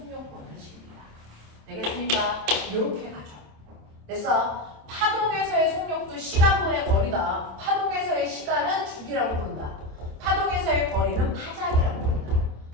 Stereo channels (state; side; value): late; left; 27 ms